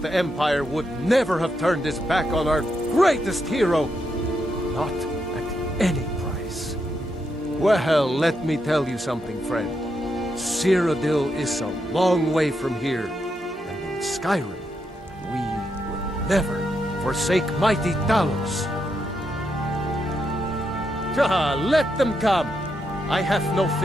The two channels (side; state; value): both; normal; correlation 0.82